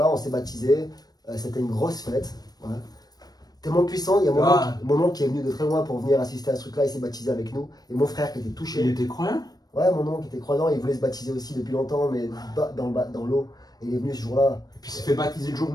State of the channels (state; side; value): late; right; 0.19 ms